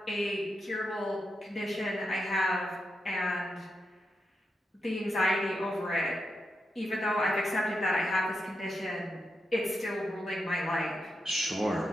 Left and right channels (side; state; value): both; normal; correlation 0.86